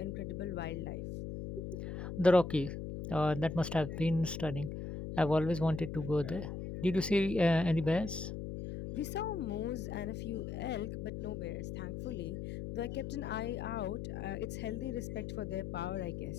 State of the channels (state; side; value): noise; left; hum, 6 dB below the sound